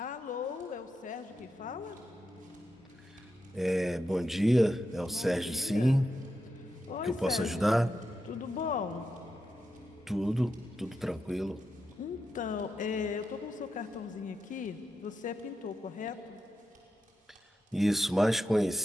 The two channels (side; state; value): both; normal; correlation 0.87